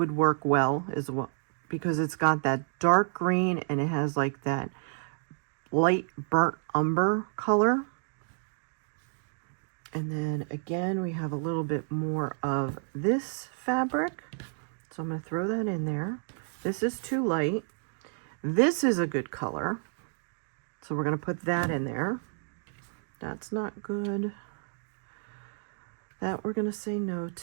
work well as well because it's got that dark green and it has like that light burnt umber color. And then again, we have a little bit more of this fabric. So I'm going to throw that in there. This is too light. This is a good color. So we're going to put that in there. That's not good. That we're going to say no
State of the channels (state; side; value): silent; left; 58 dB below the other